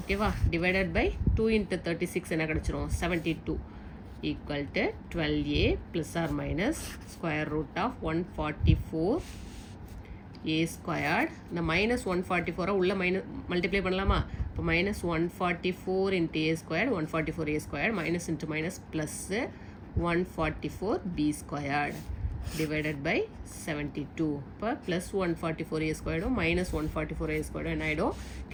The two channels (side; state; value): both; identical; correlation 1.00